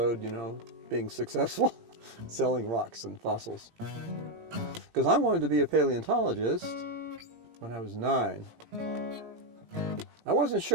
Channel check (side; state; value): left; late; 17 ms